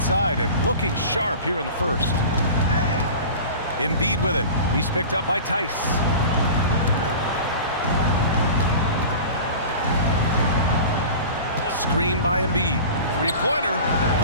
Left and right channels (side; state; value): both; inverted; correlation -0.36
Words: and looking sharp here in the first. Embiid with it. He's picked up by Tice. Screen by Embiid. 3-pointer.